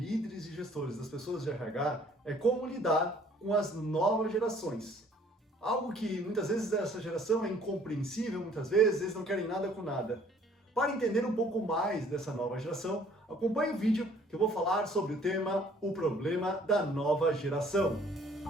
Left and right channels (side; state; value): both; normal; correlation 0.58